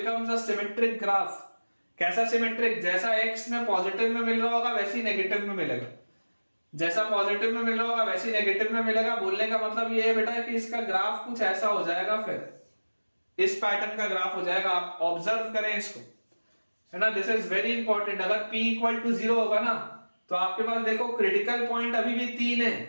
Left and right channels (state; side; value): inverted; both; correlation -1.00